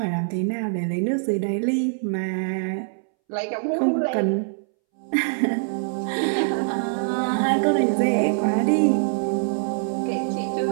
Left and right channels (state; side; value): silent; left; 63 dB below the other